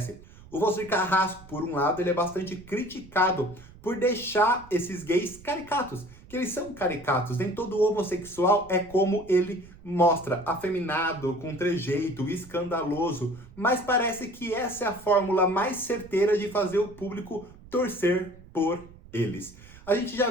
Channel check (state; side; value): noise; right; rumble, 21 dB below the sound